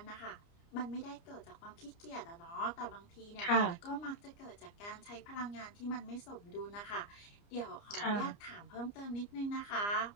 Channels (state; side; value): late; right; 29 ms